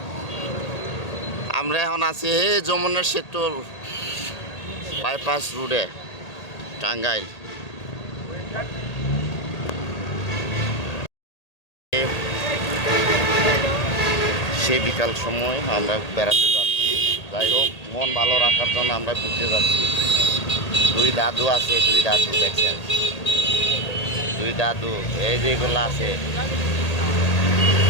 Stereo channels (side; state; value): right; late; 1.8 ms